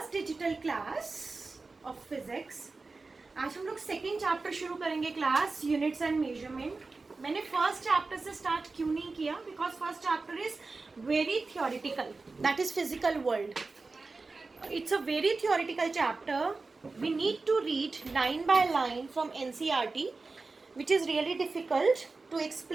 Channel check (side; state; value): left; quieter; 3.8 dB